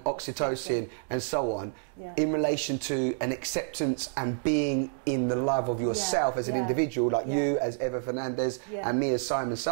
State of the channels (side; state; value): left; silent; digital silence